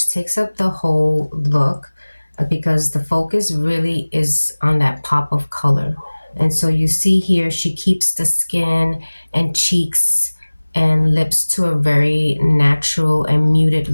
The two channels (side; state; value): both; inverted; correlation -1.00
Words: takes up the whole look because the focus really is on that pop of color. And so you see here, she keeps the skin and cheeks and lips to a very natural and muted